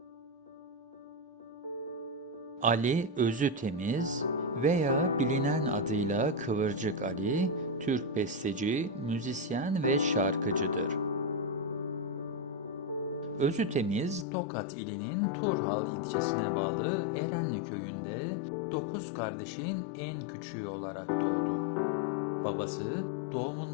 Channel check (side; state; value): right; drops out; at 14.2 s